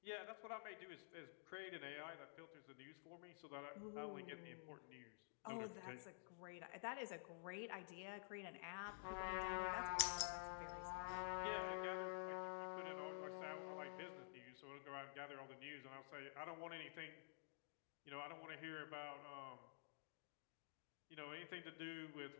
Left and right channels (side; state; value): right; silent; digital silence